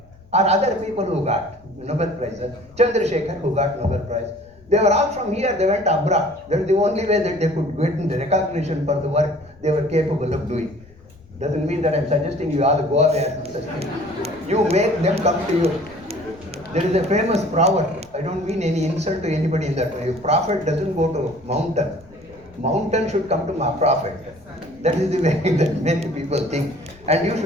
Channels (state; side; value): noise; left; rumble, 26 dB below the sound